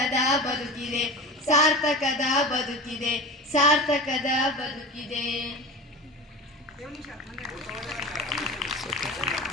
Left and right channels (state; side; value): normal; both; correlation 0.30